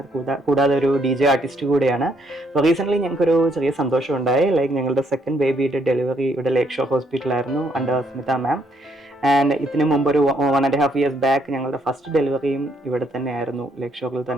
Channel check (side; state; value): both; normal; correlation 0.71